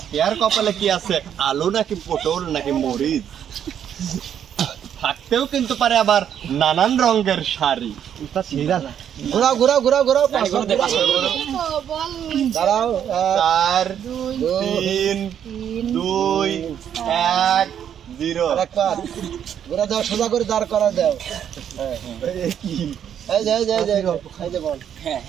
কপালে কি আছে, আলু নাকি পটল নাকি মরিচ? থাকতেও কিন্তু পারে আবার নানান রঙের শাড়ি। ঘোরাও ঘোরাও ঘোরাও ঘোরাও দাঁড়াও 4 3 2 1 0। একবার ঘোরা দাও, সোজা করে দাঁড় করা দাও। এই যে এই যে এই যে এই যে বল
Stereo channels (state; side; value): quieter; left; 9.2 dB